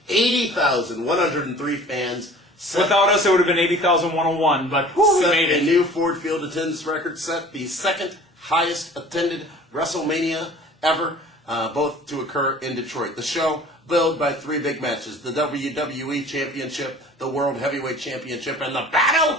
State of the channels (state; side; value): normal; both; correlation 0.46